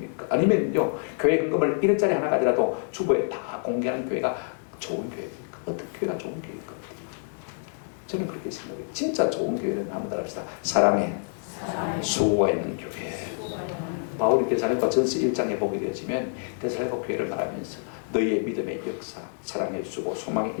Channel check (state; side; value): silent; right; digital silence